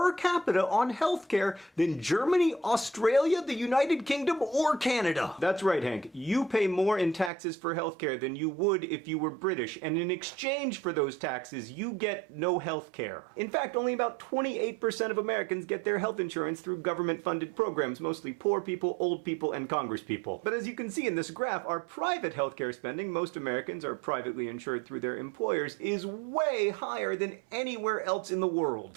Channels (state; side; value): drops out; left; at 7.3 s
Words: capita on healthcare than Germany, Australia, the United Kingdom, or Canada. That's right, Hank. You pay more in taxes for healthcare than you would if you were British, and in exchange for those taxes, you get no healthcare. In fact, only about 28% of Americans get their health insurance through government-funded programs, mostly poor people, old people, and congresspeople. But as you can see in this graph, our private healthcare spending, most Americans are privately insured through their employers, is way higher than anywhere else in the